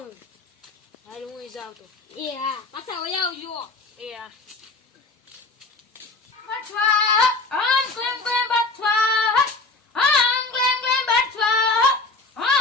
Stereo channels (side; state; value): right; quieter; 3.5 dB